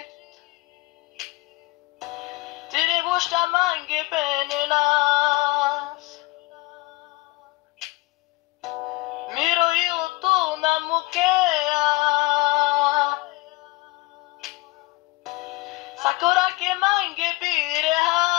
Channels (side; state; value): right; quieter; 22.3 dB